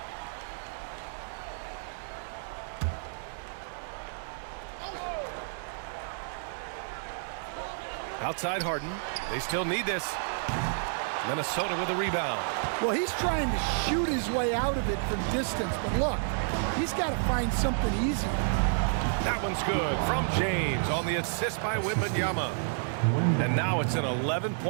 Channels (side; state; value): left; silent; digital silence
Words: Outside Harden. They still need this. Minnesota with a rebound. Well, he's trying to shoot his way out of it from distance, but look, he's got to find something easy. That one's good from James on the assist by Wembanyama. And now it's an